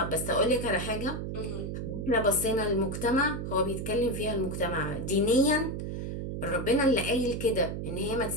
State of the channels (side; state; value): right; noise; hum, 4 dB below the sound